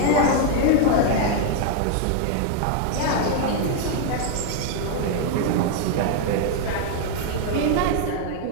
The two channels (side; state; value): both; different; correlation 0.00